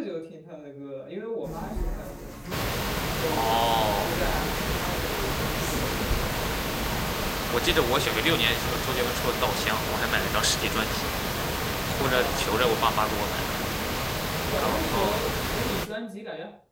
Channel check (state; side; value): identical; both; correlation 1.00